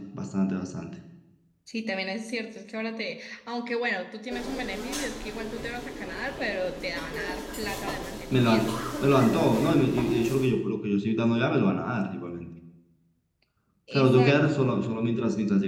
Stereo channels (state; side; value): identical; both; correlation 1.00